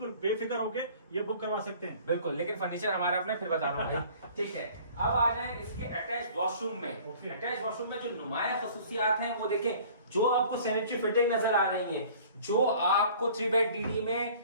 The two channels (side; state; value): both; inverted; correlation -0.49